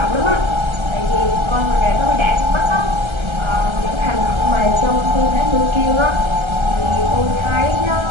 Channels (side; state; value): left; late; 1.3 ms